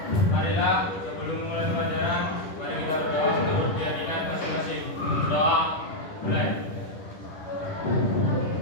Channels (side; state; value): right; late; 10 ms